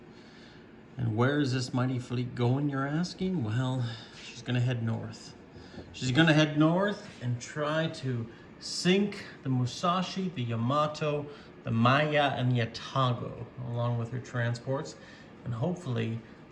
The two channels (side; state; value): both; identical; correlation 1.00